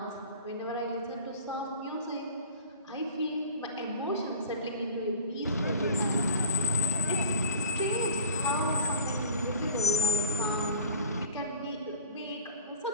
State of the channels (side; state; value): both; inverted; correlation -0.40